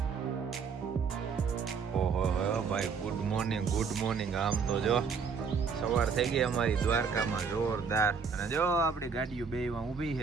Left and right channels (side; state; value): left; quieter; 5.7 dB